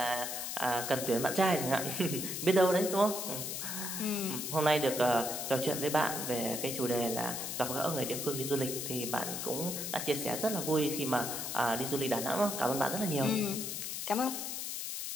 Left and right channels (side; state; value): left; noise; hiss, 4 dB below the sound